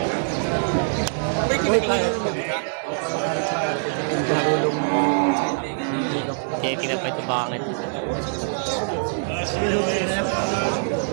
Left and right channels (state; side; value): silent; left; digital silence